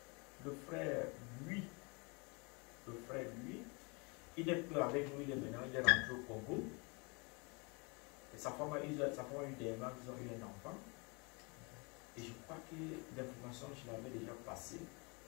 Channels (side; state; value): right; quieter; 30.8 dB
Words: le frère lui, il n'est plus avec nous, il est maintenant, il est rentré au Congo. Et sa femme a eu des mains, ils ont eu un enfant. Et je crois que l'information, je l'avais déjà passée.